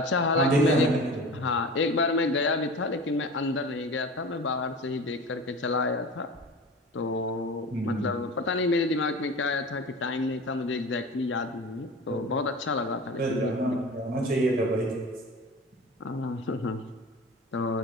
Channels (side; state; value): both; normal; correlation 0.35